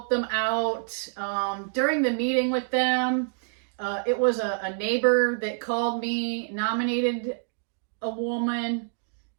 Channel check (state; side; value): silent; left; digital silence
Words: them out. During the meeting with them, it was a neighbor that called me, nominated a woman,